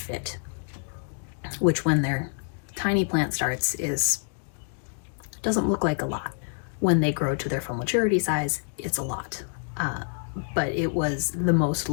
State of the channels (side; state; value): right; silent; digital silence